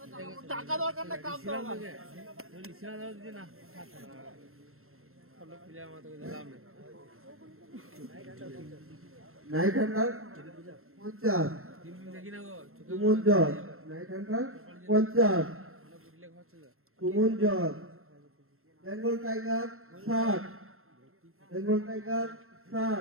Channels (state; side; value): late; left; 0.62 ms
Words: টাকা দরকার না কাপ দরকার নাইট হান্টার 50 সুমন জজ নাইট হান্টার 50 সুমন জজ Bengal tiger 60, Bengal tiger